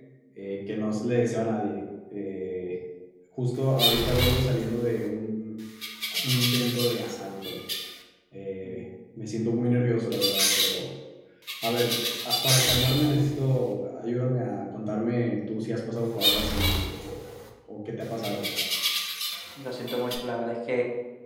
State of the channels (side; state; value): both; identical; correlation 1.00